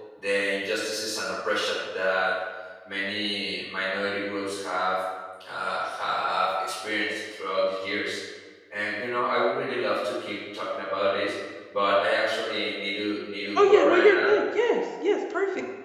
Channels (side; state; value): both; identical; correlation 1.00